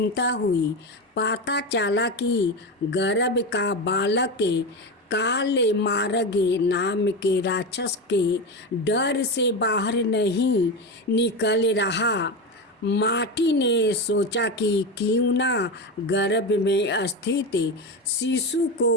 हुई। पता चला कि गर्भ का बालक काले मार्ग नाम के राक्षस के डर से बाहर नहीं निकल रहा। माटी ने सोचा कि क्यों ना गर्भ में स्थित शिशु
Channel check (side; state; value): both; normal; correlation 0.18